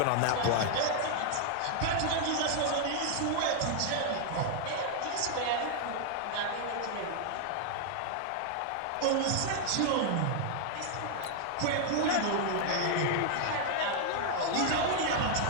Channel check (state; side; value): different; both; correlation 0.00